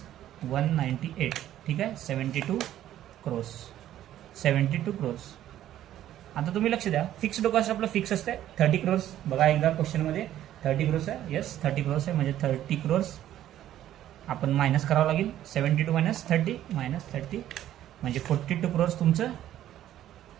198, ठीक आहे, 72 क्रोर्स. 72 क्रोर्स. आता तुम्ही लक्ष द्या, फिक्स्ड कॉस्ट आपलं फिक्स असते 30 क्रोर्स. बघा एकदा क्वेश्चनमध्ये 30 क्रोर्स आहे. येस, 30 क्रोर्स आहे, म्हणजे 30 क्रोर्स आपण मायनस करावं लागेल. 72 मायनस 30 म्हणजे 42 क्रोर्स तुमचं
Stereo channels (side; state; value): left; quieter; 12.4 dB